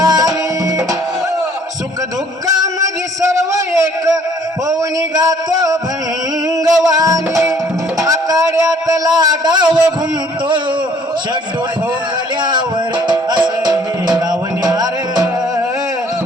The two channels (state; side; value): normal; both; correlation 0.59